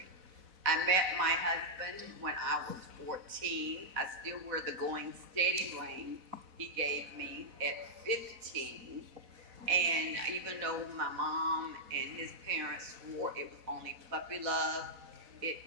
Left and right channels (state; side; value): late; left; 4.1 ms